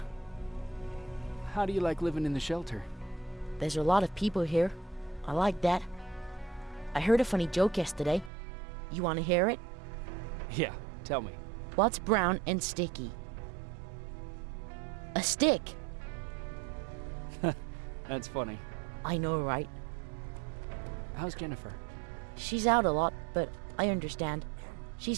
How do you like living in the shelter? There's a lot of people here. I like that. I heard a funny joke yesterday. You want to hear it? Yeah, tell me. What's brown and sticky? A stick! That's funny. I know, right? How's Jennifer? She's out a lot, but I understand.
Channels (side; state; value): left; drops out; at 8.3 s